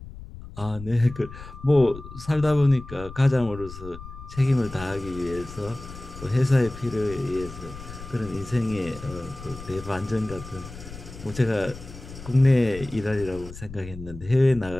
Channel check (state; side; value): noise; left; rumble, 14 dB below the sound